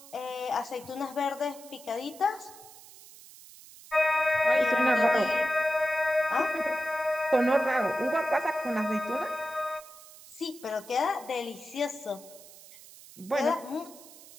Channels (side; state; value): right; noise; hiss, 19 dB below the sound